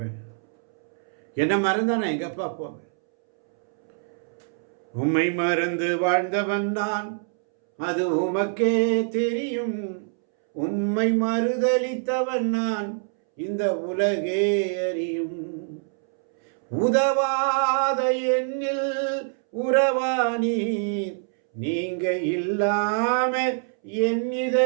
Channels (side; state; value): left; silent; 62 dB below the other